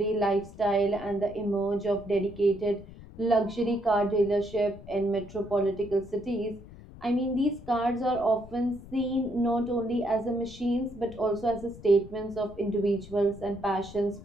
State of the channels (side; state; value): left; noise; rumble, 17 dB below the sound